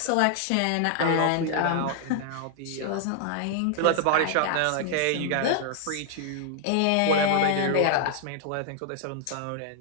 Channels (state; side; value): different; both; correlation 0.00